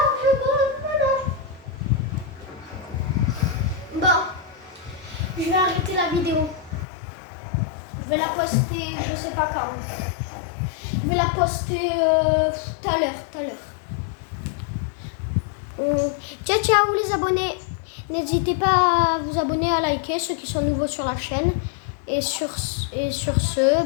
pas, voilà. Bon, je vais arrêter la vidéo. Je vais la poster, je sais pas quand. Je vais la poster tout à l'heure. Ciao ciao les abonnés. N'hésitez pas à vous abonner, à liker ceux qui sont nouveaux sur la chaîne. Et sur ce,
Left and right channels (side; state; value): right; drops out; at 6.9 s